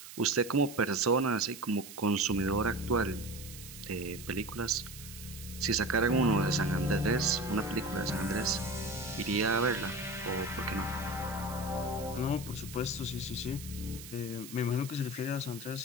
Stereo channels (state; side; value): noise; right; hiss, 14 dB below the sound